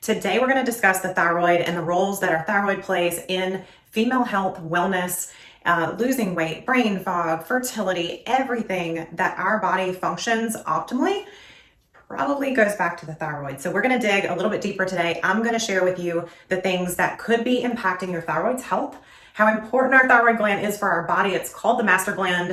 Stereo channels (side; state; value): both; identical; correlation 1.00